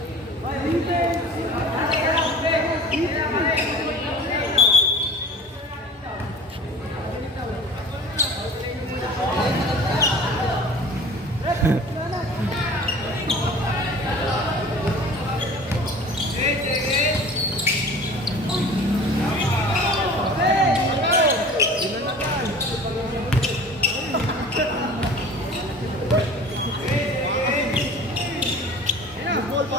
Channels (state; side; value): normal; both; correlation 0.43